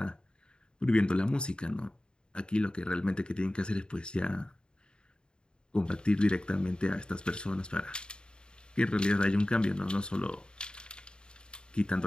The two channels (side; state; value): right; late; 0.050 ms